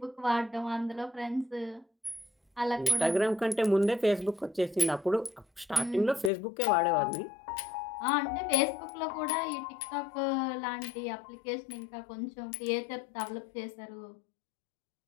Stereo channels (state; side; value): drops out; right; at 6.3 s